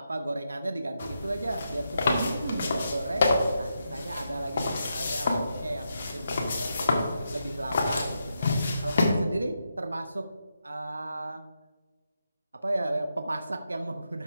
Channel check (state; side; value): inverted; both; correlation -0.84